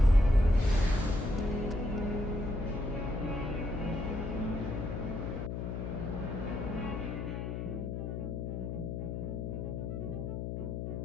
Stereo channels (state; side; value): noise; left; hum, 3 dB below the sound